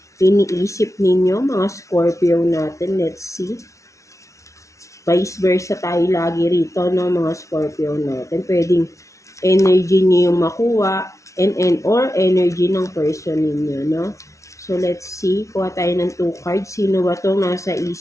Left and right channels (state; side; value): late; right; 0.15 ms